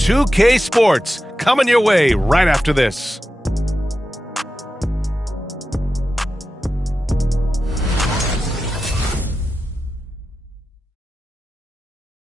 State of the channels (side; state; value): both; normal; correlation 0.92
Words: Sports coming your way right after this.